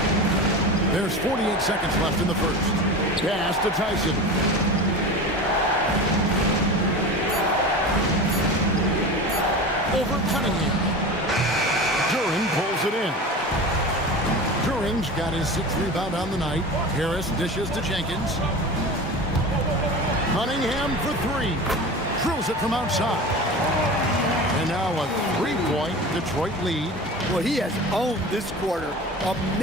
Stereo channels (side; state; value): both; normal; correlation 0.31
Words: There's 48 seconds left in the first. Pass to Tyson. Over Cunningham. Duran pulls it in. Duran's got his 6th rebound on the night. Harris dishes to Jenkins. Cunningham for 3. Drills it from outside. And now a 3-point Detroit lead. Well, he has owned this quarter. A